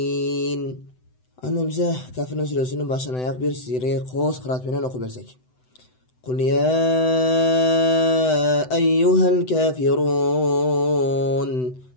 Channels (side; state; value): right; late; 7.9 ms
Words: Ana bize Kafirun suresinin başına ayak bir sire qo'z qira'at bilan o'qib bersak. Qul ya ayyuhal kafirun